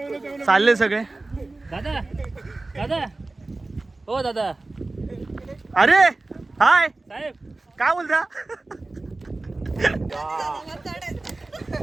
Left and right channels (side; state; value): left; quieter; 3.1 dB